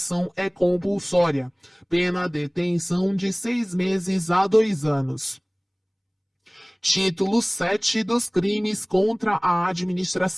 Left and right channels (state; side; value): identical; both; correlation 1.00